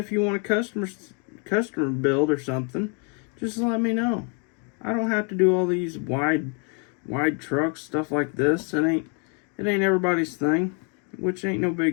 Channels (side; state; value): right; quieter; 37.8 dB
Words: you want a customer build or something, just let me know. I don't have to do all these wide trucks, stuff like this. It ain't everybody's thing, which ain't no